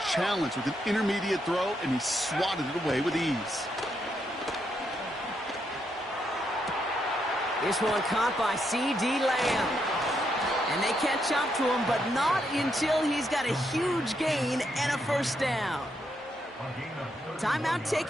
challenged with an intermediate throw, and he swatted it away with ease. This one caught by C.D. Lamb. And they catch up to him, but not until he's got a huge gain and a 1st down. Timeout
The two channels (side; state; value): both; normal; correlation 0.79